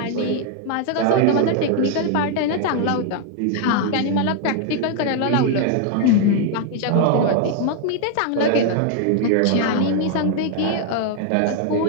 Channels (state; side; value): different; both; correlation 0.01